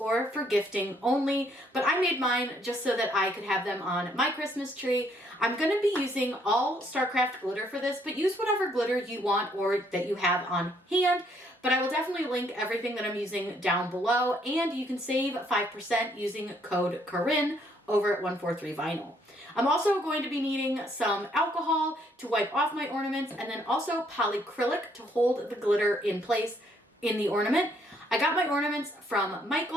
for gifting only, but I made mine just so that I could have them on my Christmas tree. I'm going to be using all StarCraft glitter for this, but use whatever glitter you want or that you have on hand. But I will definitely link everything that I'm using down below, and you can save 5% using code Corinne over at 143 Vinyl. I'm also going to be needing some alcohol to wipe off my ornaments, and then also polyacrylic to hold the glitter in place in the ornament. I got my ornaments from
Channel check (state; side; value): normal; both; correlation 0.68